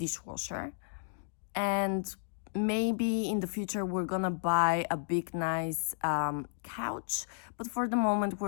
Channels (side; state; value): right; silent; digital silence